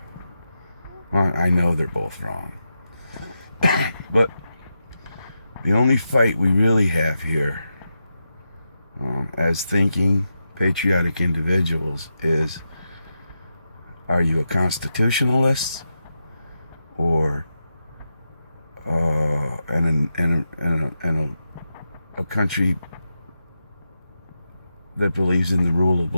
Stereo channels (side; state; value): both; inverted; correlation -0.88